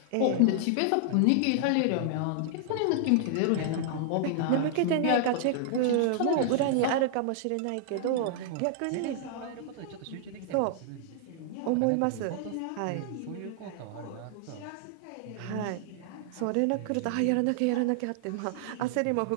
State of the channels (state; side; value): different; both; correlation -0.01